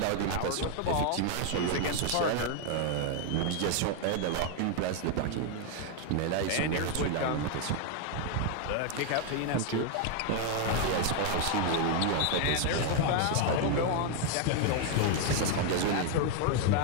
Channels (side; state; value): both; different; correlation 0.01